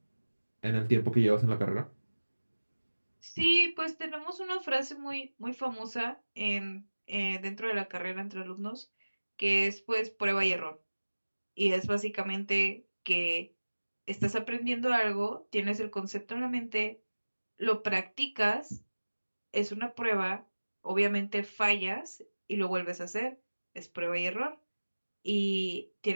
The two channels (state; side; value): inverted; both; correlation -1.00